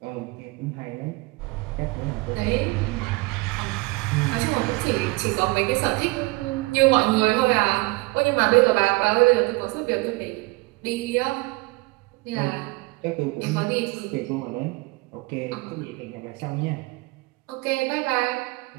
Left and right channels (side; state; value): left; quieter; 24.1 dB